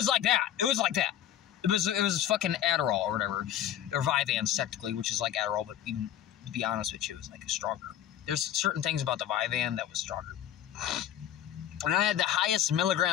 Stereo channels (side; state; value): right; quieter; 11.1 dB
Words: like that. It was fucking Adderall or whatever. Or Vyvanse, technically, which is like Adderall, but even, to be honest with you, it was like stronger. There's certain things about the Vyvanse that was stronger. And I had the highest